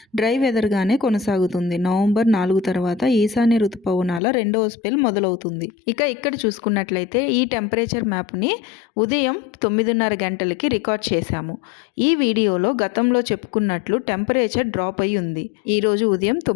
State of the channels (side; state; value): right; drops out; at 4.2 s